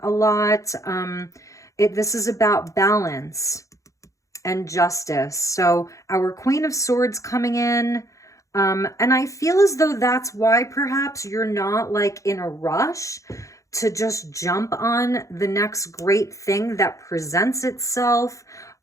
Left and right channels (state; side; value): late; right; 0.15 ms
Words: a lot. This is about balance and justice. So our Queen of Swords coming in. And I feel as though that's why perhaps you're not like in a rush to just jump on the next great thing that presents itself.